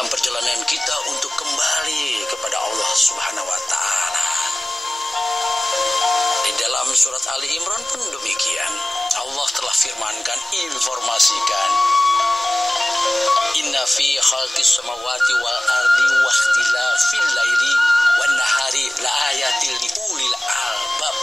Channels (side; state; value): both; normal; correlation 0.97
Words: perjalanan kita untuk kembali kepada Allah Subhanahu wa Ta'ala. Di dalam surat Ali Imran pun demikian. Allah telah firmankan, informasikan, inna fi khalqis samawati wal ardi wa ikhtilafil laili wan nahari la ayatil liulil albab.